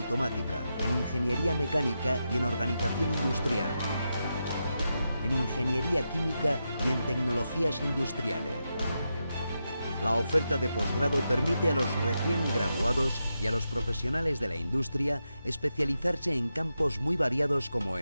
en Ingeniería Mecánica y en Organización Industrial, en Ingeniería Química y en Tecnologías Industriales. La oferta de posgrado permite a los recién graduados y a los profesionales de la industria especializarse en campos muy variados como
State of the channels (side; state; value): both; inverted; correlation -0.87